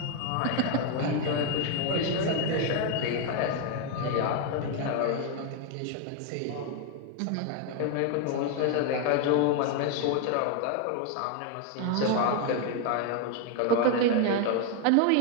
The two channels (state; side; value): different; both; correlation 0.01